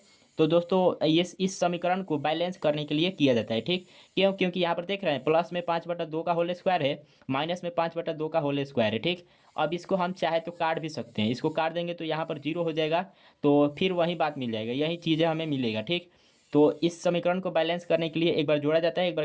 तो दोस्तों ये इस समीकरण को बैलेंस करने के लिए किया जाता है। ठीक, क्यों, क्योंकि यहाँ पर देख रहे हैं प्लस में 5/2 का होल स्क्वायर है, माइनस में 5/2 का होल स्क्वायर है। ठीक, अब इसको हम चाहे तो काट भी सकते हैं, इसको काट देंगे तो यहाँ पर 0 हो जाएगा, तो फिर वही बात मिल जाएगा, यही चीज़ें हमें मिलेगा। ठीक, तो इस समीकरण को बैलेंस करने के लिए एक बार जोड़ा जाता है, एक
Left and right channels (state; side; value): identical; both; correlation 1.00